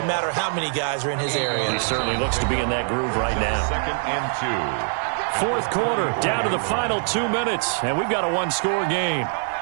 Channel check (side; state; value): left; silent; 63 dB below the other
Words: matter how many guys are in his area. He certainly looks to be in that groove right now. Second and 2. Fourth quarter, down to the final 2 minutes, and we've got a one-score game.